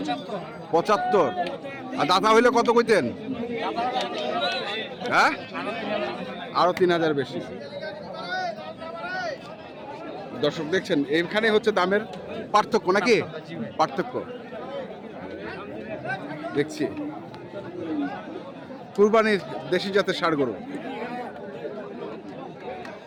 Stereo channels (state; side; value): identical; both; correlation 1.00